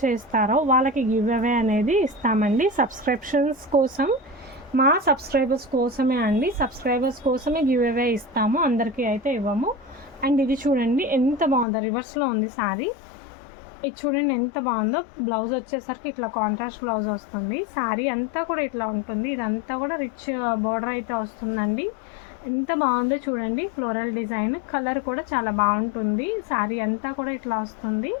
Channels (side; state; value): right; drops out; at 11.7 s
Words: చేస్తారో వాళ్ళకి గివ్ అవే అనేది ఇస్తామండి. సబ్స్క్రిప్షన్స్ కోసం, మా సబ్స్క్రైబర్స్ కోసమే అండి. సబ్స్క్రైబర్స్ కోసమే గివ్ అవే ఇస్తాము, అందరికీ అయితే ఇవ్వము. అండ్ ఇది చూడండి ఎంత బాగుందో, రివర్స్లో ఉంది శారీ. ఇది చూడండి ఎంత బాగుందో. బ్లౌజ్ వచ్చేసరికి ఇట్లా కాంట్రాస్ట్ బ్లౌజ్ వస్తుంది. శారీ అంతా కూడా ఇట్లా ఉంటుంది. ఇదంతా కూడా రిచ్ బార్డర్ అయితే వస్తుందండి. ఎంత బాగుందో చూడండి. ఫ్లోరల్ డిజైన్, కలర్ కూడా చాలా బాగుంటుంది. శారీ అంతా కూడా ఇట్లా వస్తుంది.